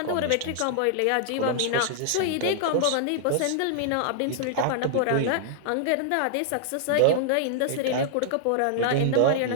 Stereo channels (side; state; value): both; different; correlation -0.01